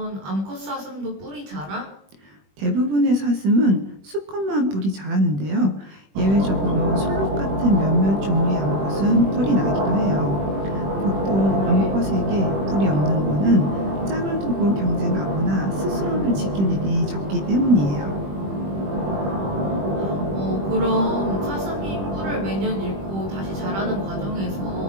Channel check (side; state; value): left; late; 21 ms